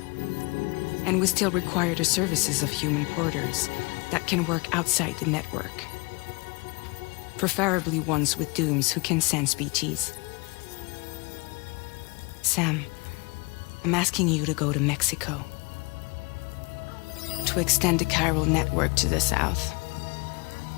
And we still require the services of human porters that can work outside the network. Preferably ones with dooms who can sense BTs. Sam, I'm asking you to go to Mexico. To extend the Carol network to the south.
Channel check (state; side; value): quieter; right; 28.1 dB